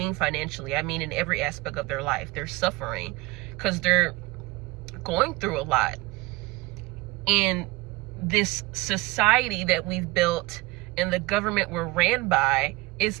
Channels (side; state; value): left; quieter; 21.8 dB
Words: financially. I mean in every aspect of their life. They're suffering because they're going through a lot. And this society that we've built and the government we're ran by